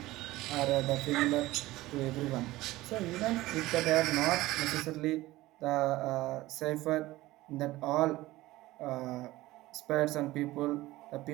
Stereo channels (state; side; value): quieter; left; 17.9 dB